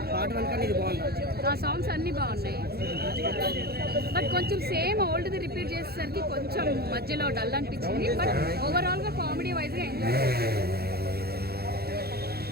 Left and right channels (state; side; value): late; left; 0.46 ms